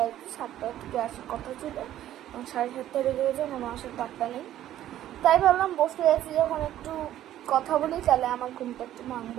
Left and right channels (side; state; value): left; quieter; 12.6 dB